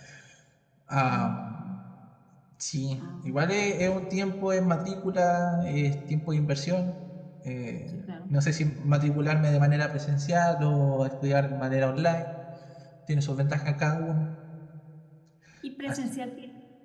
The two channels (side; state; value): both; identical; correlation 1.00